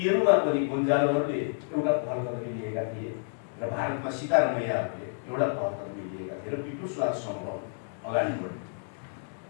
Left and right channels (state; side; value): silent; right; digital silence